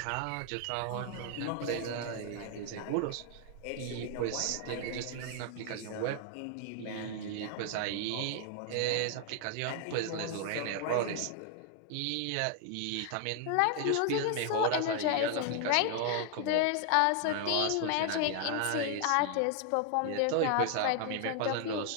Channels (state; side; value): different; both; correlation 0.00